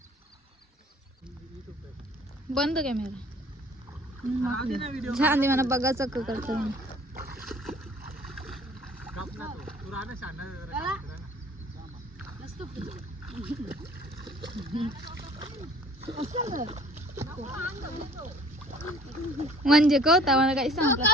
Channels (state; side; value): normal; both; correlation 0.51